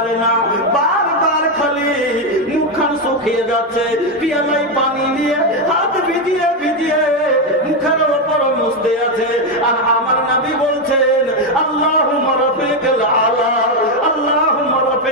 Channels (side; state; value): both; normal; correlation 0.06